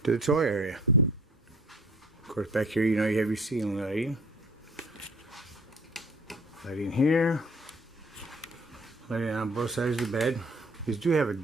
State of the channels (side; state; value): both; normal; correlation 0.53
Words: to the toy area. Of course, back here, you know, you have your ceiling lighting. Lighting here. Lighting on both sides of the bed. These do have a